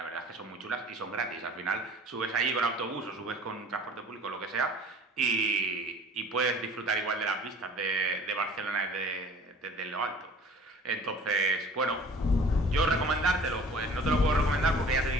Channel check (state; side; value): normal; both; correlation 0.47